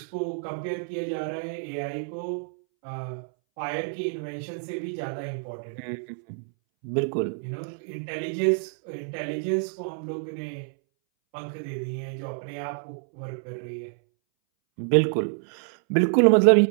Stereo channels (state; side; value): silent; left; 60 dB below the other